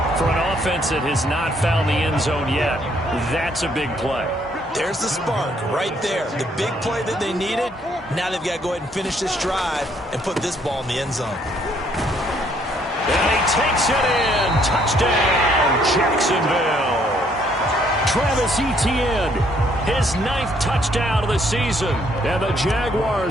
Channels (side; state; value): both; normal; correlation 0.67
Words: For an offense that has not found the end zone yet, that's a big play. There's the spark right there. The big play that they needed. Now they've got to go ahead and finish this drive and put this ball in the end zone. And he takes it in. Touchdown, Jacksonville. Travis Etienne, his 9th touchdown of the season. And the